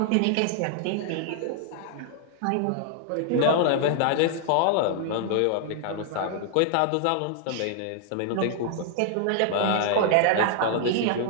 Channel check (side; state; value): both; different; correlation 0.00